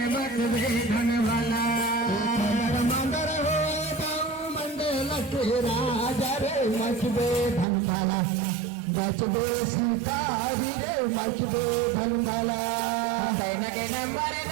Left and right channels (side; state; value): left; drops out; at 7.7 s